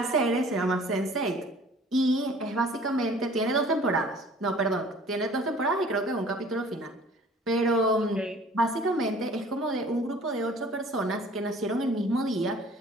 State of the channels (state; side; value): normal; both; correlation 0.50